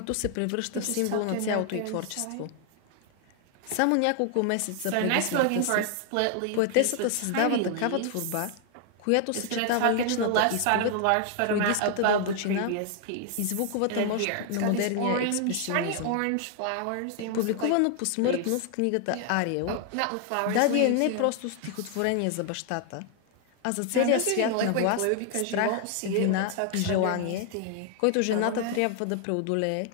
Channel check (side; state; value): both; different; correlation 0.00